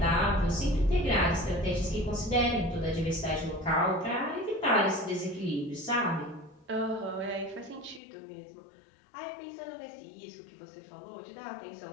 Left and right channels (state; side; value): drops out; right; at 8.0 s